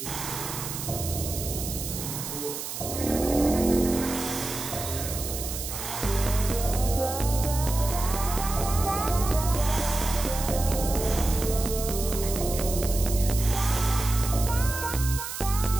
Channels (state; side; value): noise; right; hiss, 7 dB below the sound